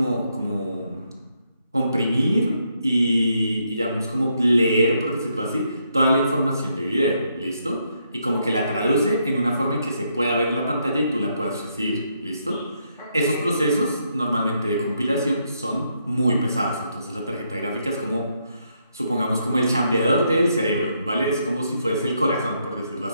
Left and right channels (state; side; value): inverted; both; correlation -0.76